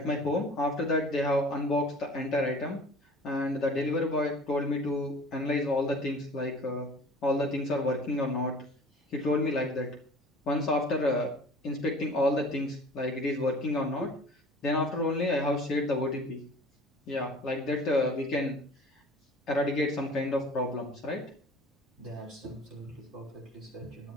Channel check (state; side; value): normal; both; correlation 0.46